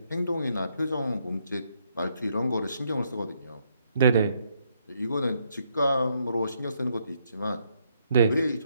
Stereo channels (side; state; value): both; inverted; correlation -0.74